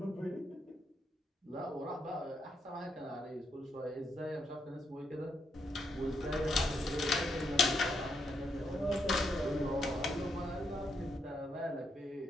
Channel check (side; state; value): both; normal; correlation 0.79